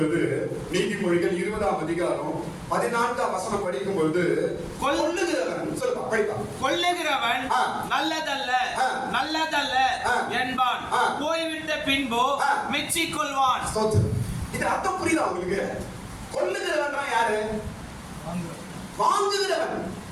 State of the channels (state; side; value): identical; both; correlation 1.00